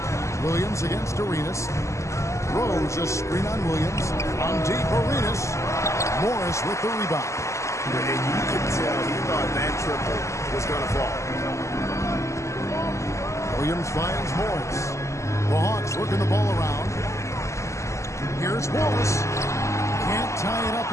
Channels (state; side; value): late; right; 0.14 ms